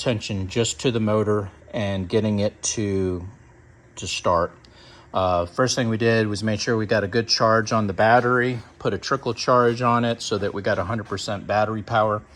just to the motor and getting it to start. First thing we did was make sure we got a good charge on the battery, put a trickle charge on it so that we got 100% battery power.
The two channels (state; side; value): identical; both; correlation 1.00